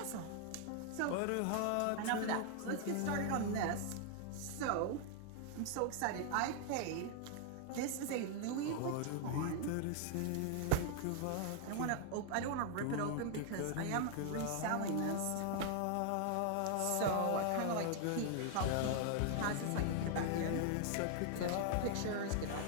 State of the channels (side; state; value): both; different; correlation 0.00